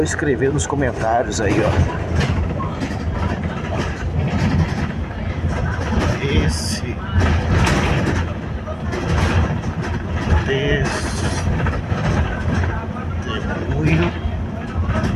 escrever nos comentários aí, ó. Esse testemunho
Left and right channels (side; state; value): both; identical; correlation 1.00